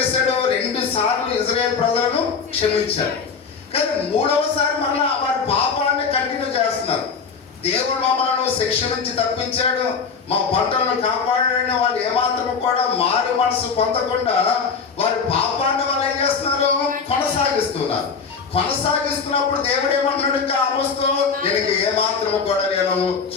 2 సార్లు ఇశ్రాయేలు ప్రజలను క్షమించాడు. కానీ 3వసారి మళ్ళా వారి పాపాన్ని కంటిన్యూ చేస్తున్నారు. దేవుడు మమ్మల్ని శిక్ష నుంచి తప్పించాడు, మా పంటలను కాపాడాడని వాళ్ళు ఏమాత్రం కూడా మారు మనసు పొందకుండా వారి పాపాన్ని వాళ్ళు ఏం చేస్తున్నారు? కొనసాగిస్తున్నప్పుడు దేవుడు ఏమంటున్నాడు? ఇంకా ఆమోస్తో, నేను ఏమాత్రం కూడా నేను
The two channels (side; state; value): right; quieter; 5.6 dB